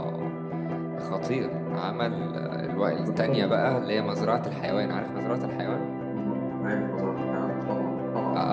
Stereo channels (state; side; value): identical; both; correlation 1.00